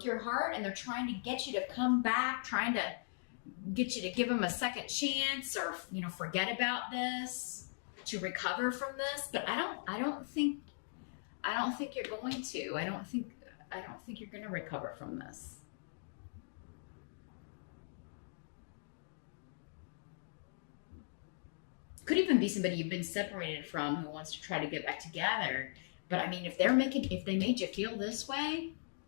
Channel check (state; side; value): silent; right; digital silence